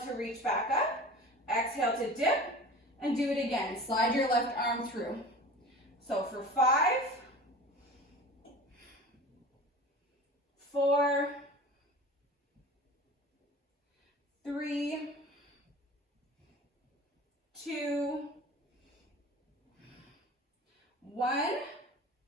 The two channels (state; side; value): normal; both; correlation 0.37